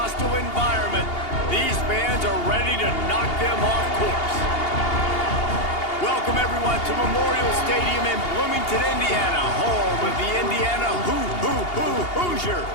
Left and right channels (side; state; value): right; late; 2.8 ms